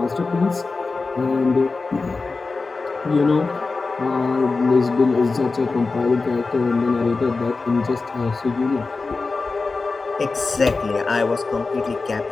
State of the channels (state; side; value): quieter; right; 4.0 dB